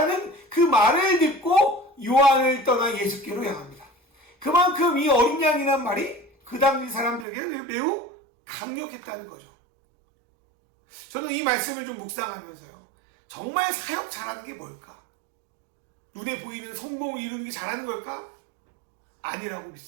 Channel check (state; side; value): drops out; left; at 7.2 s